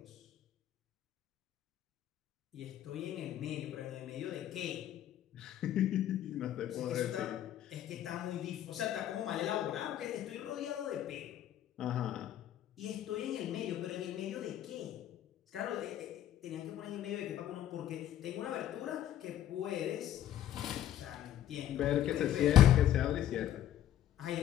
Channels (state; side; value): quieter; right; 11.6 dB